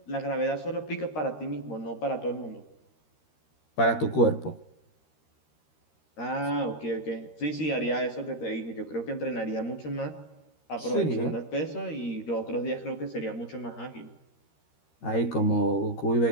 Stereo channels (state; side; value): late; right; 13 ms